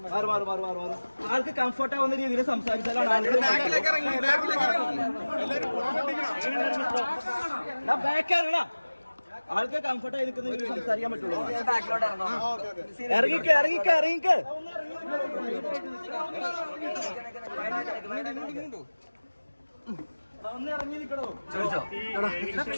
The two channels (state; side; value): inverted; both; correlation -1.00